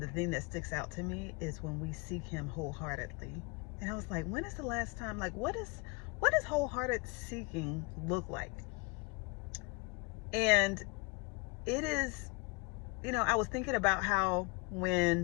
the thing that sticks out to me is when we seek him wholeheartedly. And I was like, when is the last time, like, what does wholehearted seeking look like? And it is, I was thinking about how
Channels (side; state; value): right; quieter; 29.8 dB